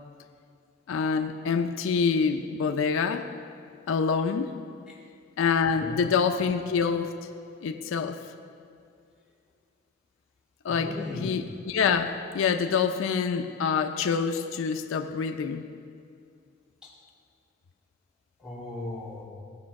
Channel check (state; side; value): quieter; right; 5.5 dB